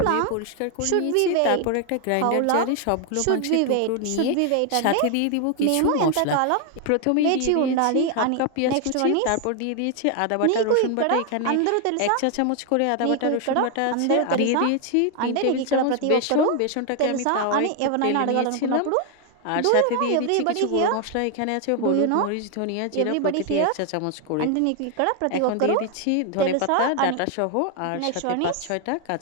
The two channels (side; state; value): both; different; correlation 0.00